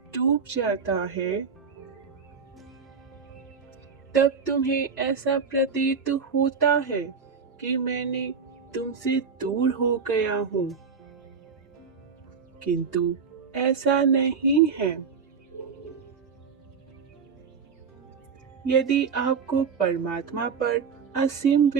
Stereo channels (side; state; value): left; quieter; 5.8 dB